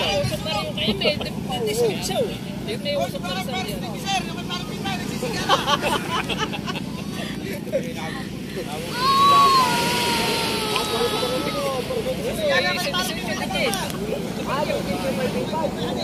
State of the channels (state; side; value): identical; both; correlation 1.00